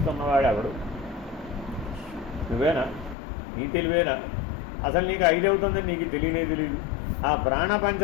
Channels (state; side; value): drops out; right; at 3.2 s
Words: ఎవడు? నువ్వేనా? నీ తెలివేనా? అసలు నీకు 5 అవుతుందని నీకు తెలియదు. ఆ